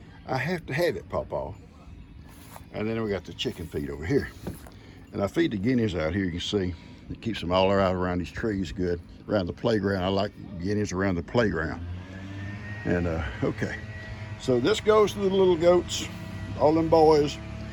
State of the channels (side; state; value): both; identical; correlation 1.00